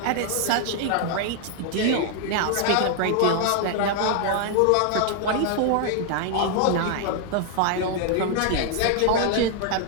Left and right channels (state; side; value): different; both; correlation 0.00